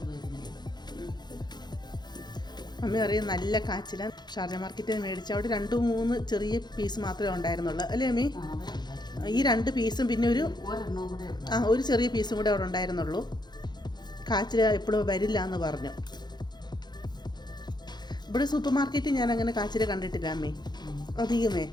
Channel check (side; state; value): right; late; 0.21 ms